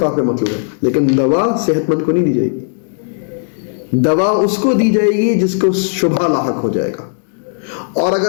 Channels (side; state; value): right; silent; digital silence